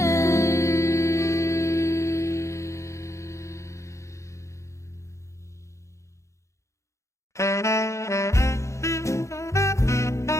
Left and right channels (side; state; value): right; late; 0.14 ms